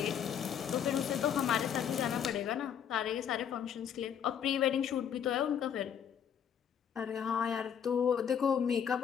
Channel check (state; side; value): quieter; right; 8.5 dB